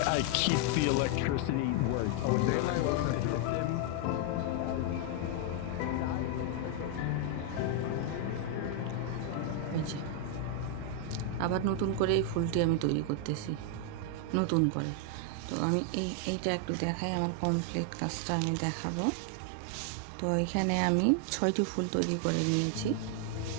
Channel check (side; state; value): both; different; correlation 0.00